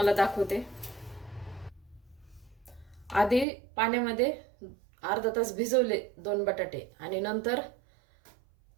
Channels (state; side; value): drops out; left; at 3.5 s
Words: दाखवते। आधी पाण्यामध्ये अर्धा तास भिजवले 2 बटाटे आणि नंतर